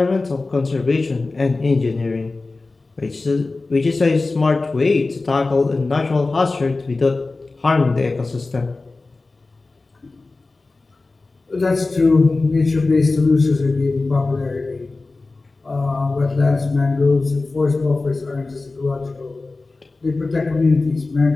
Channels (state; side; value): quieter; right; 3.5 dB